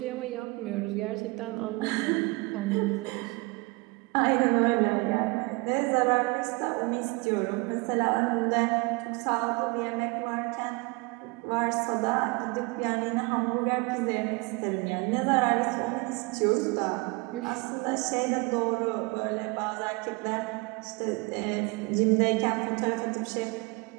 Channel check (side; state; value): left; quieter; 27.2 dB